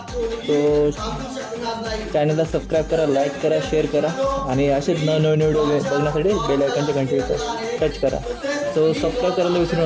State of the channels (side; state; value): both; identical; correlation 1.00